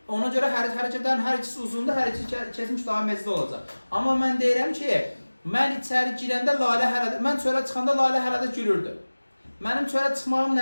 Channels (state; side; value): inverted; both; correlation -1.00